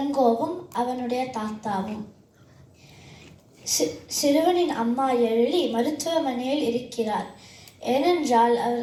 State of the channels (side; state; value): both; identical; correlation 1.00